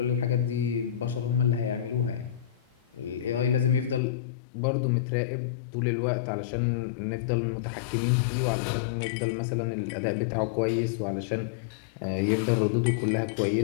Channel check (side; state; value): right; drops out; at 4.0 s